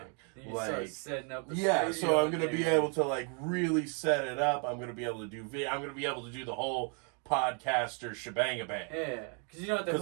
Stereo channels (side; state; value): left; quieter; 38.3 dB